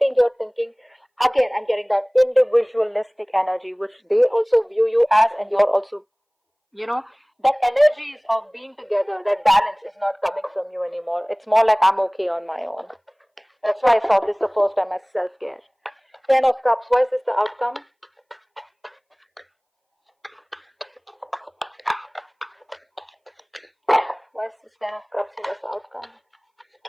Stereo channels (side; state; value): both; identical; correlation 1.00